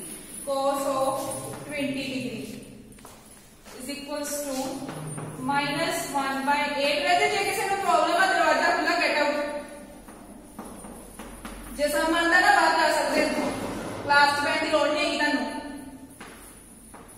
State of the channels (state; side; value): identical; both; correlation 1.00